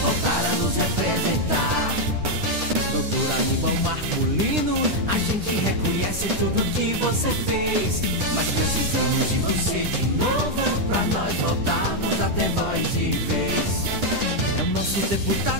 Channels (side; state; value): left; late; 9.9 ms